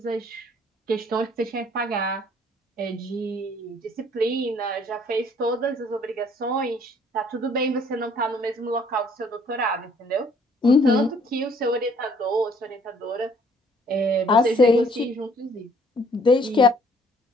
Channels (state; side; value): normal; both; correlation 0.61